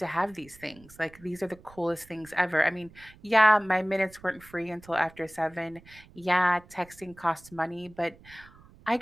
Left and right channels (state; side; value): noise; right; rumble, 24 dB below the sound